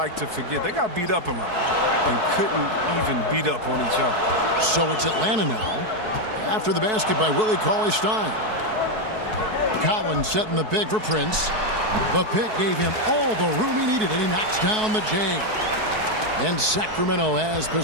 to forget. They got beat up a lot and couldn't even beat up on each other. So it's Atlanta now. After the basket by Willie Cauley-Stein. Collins setting the pick for Prince. The pick gave him all the room he needed, and he knocks down the J. And Sacramento has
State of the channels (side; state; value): left; late; 4.6 ms